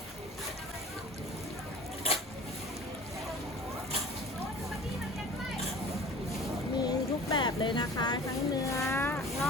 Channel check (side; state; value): both; normal; correlation 0.43